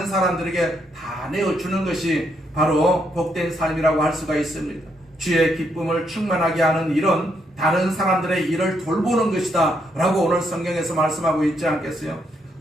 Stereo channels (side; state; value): both; normal; correlation 0.76